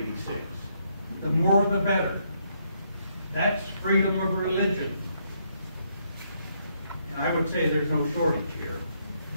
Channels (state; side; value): inverted; both; correlation -0.73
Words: The more the better. That's freedom of religion. And I would say there's no shortage here.